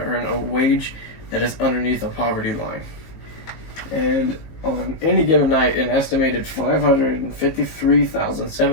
a wage that is underneath the poverty line. And on any given night, an estimated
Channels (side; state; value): right; late; 19 ms